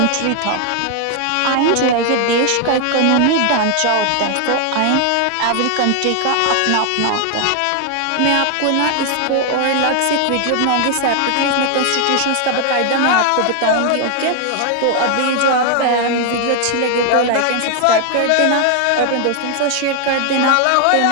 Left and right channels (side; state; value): both; different; correlation 0.00